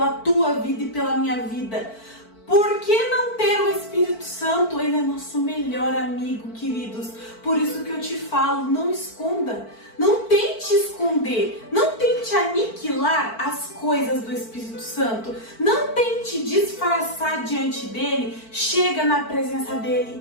tua vida e pela minha vida. Por que não ter o Espírito Santo? Ele é nosso melhor amigo, queridos. Por isso que eu te falo, não esconda. Não tente esconder. Não tente aniquilar as coisas do Espírito Santo. Não tente disfarçar diante dele. Chega na presença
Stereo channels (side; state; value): right; late; 4.5 ms